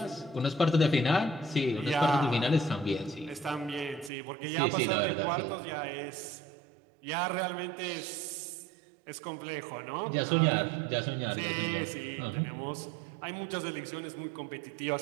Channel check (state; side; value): drops out; left; at 4.1 s